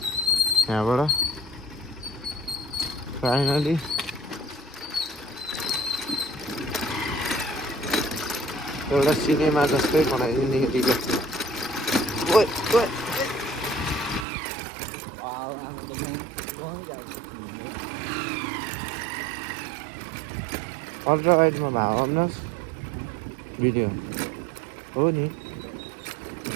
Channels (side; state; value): left; drops out; at 14.2 s